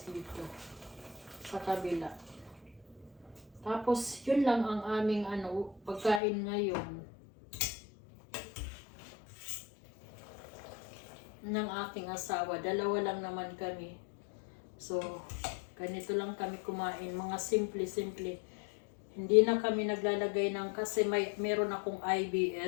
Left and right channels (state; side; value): drops out; right; at 6.2 s